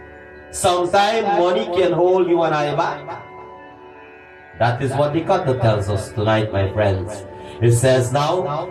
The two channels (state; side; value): identical; both; correlation 1.00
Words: Sometimes money can hold you and I back. That is what the Katha tells us tonight, my friends. It says now,